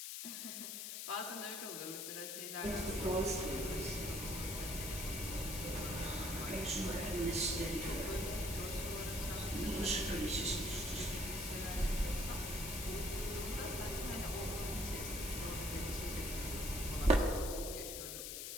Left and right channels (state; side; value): noise; left; hiss, 5 dB below the sound